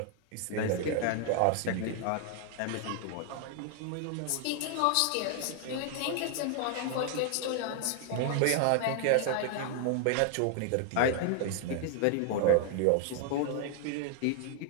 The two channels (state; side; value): different; both; correlation 0.00